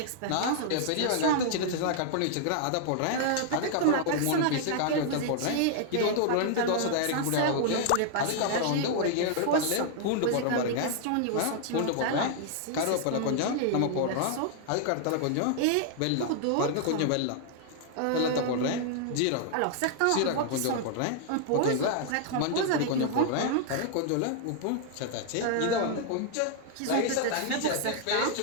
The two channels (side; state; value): both; different; correlation 0.00